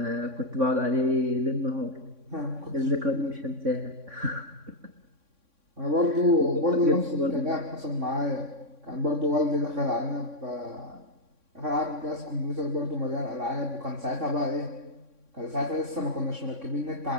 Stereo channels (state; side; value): late; left; 3.6 ms